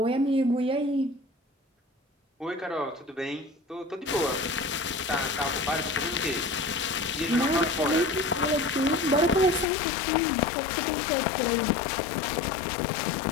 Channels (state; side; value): drops out; right; at 9.7 s